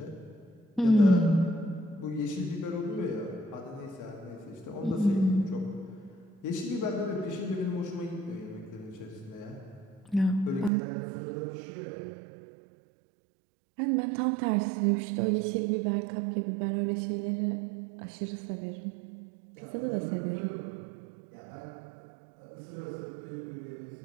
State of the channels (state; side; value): drops out; left; at 10.7 s